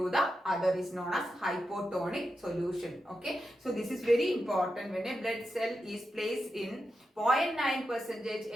the other is known as hypotonic solution. Okay, so this is very important. When a blood cell is placed in 0.9 percentage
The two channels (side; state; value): both; normal; correlation 0.89